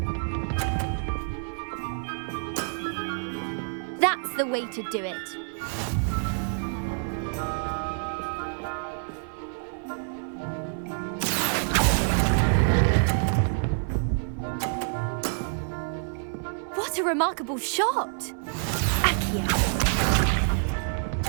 That's the way to do it. What a remarkable shot! Accio.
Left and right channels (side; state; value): left; silent; 60 dB below the other